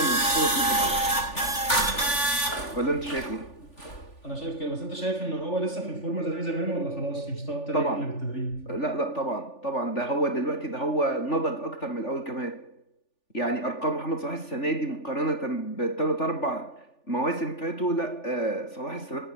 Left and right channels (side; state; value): right; late; 3.4 ms